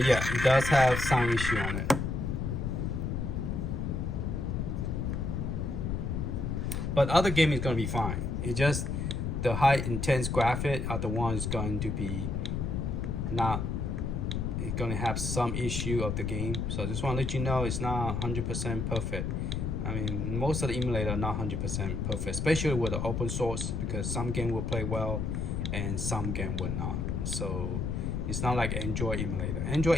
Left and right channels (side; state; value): left; noise; rumble, 1 dB below the sound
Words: it does have sound issue on it. But other game is going to be fine. It's just the high intense graphic are the ones going to be not. It's going to have some issue of the game. So I just want to let you know it's not 100% perfect. I mean, most of the emulator are not 100% perfect, especially with the open source, because some game will play well and some game will not. So it's not like Android emulator.